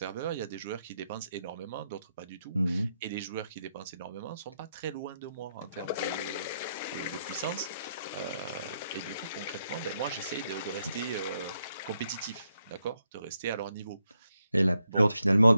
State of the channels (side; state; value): both; inverted; correlation -0.80